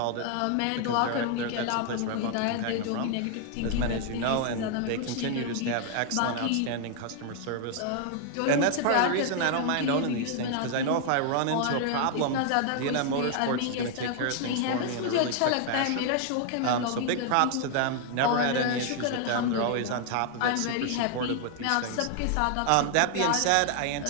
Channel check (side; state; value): both; different; correlation 0.00